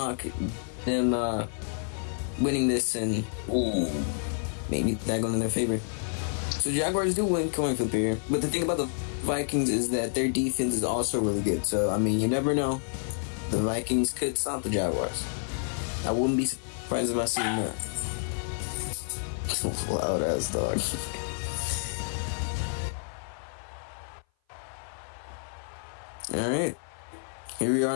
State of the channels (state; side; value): silent; right; 56 dB below the other